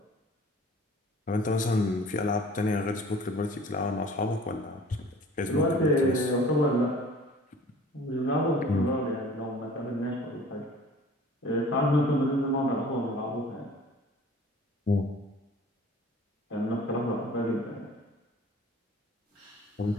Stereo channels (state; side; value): normal; both; correlation 0.48